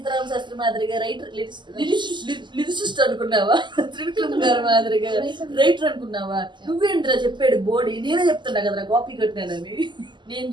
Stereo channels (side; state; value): left; late; 0.22 ms